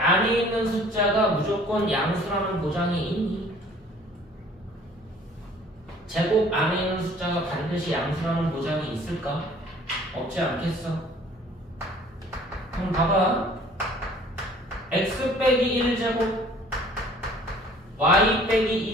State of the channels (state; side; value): normal; both; correlation 0.53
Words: 있는 숫자가 무조건 양수라는 보장이 있니? 제곱 안에 있는 숫자가 반드시 양수라는 보장이 있을까? 없지 않겠어? 그럼 봐봐. x 빼기 1제곱 y